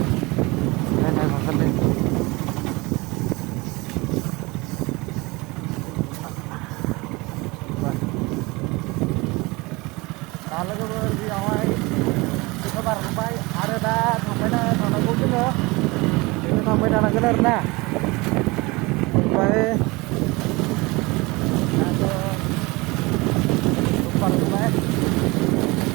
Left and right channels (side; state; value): left; quieter; 23.9 dB